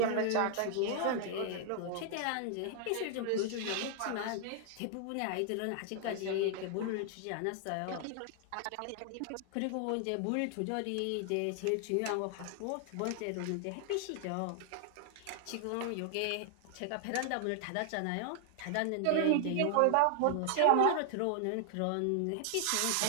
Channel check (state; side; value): different; both; correlation 0.00